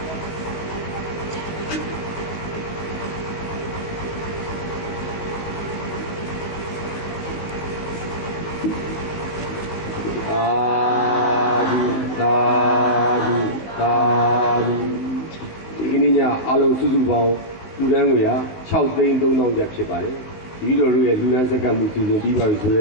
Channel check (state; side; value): late; right; 18 ms